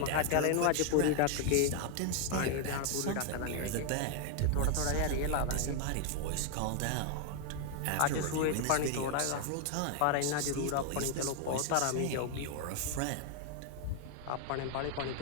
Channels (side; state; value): both; different; correlation 0.00